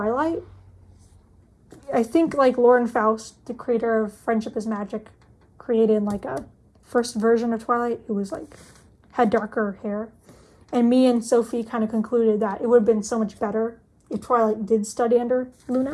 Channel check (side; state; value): both; identical; correlation 1.00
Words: I think like Lauren Faust, the creator of Friendship is Magic, created like a first version of Twilight. It was like had darker hair, and me and Sophie kind of concluded that it would have been so much better if Twilight did study under